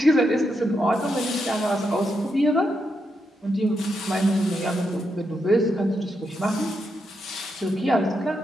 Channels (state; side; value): normal; both; correlation 0.83